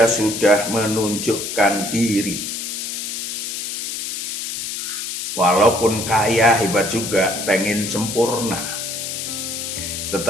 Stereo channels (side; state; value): left; noise; hiss, 4 dB below the sound